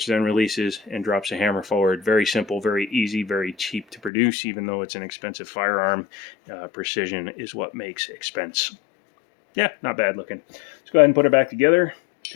then releases and drops a hammer forward. Very simple, very easy, very cheap to produce, even though it's an expensive firearm. Precision is what makes expense. Yeah, not bad looking. Let's go ahead and put it back together.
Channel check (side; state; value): right; drops out; at 4.1 s